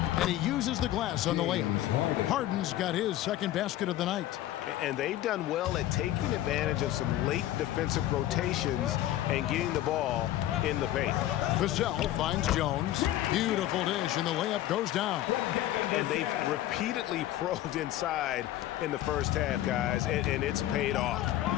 And he uses the glass on the layup. Harden's got his second basket of the night. And they've done well at taking advantage of some late defensive rotations and getting the ball in the paint. Vassell finds Jones. Beautiful dish, and the layup goes down. And they've repeatedly probed inside in the first half, guys, and it's paid off.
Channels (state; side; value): quieter; right; 13.7 dB